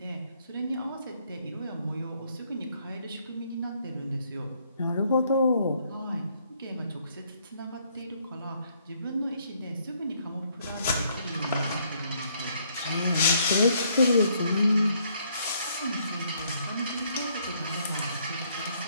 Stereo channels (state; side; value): inverted; both; correlation -0.68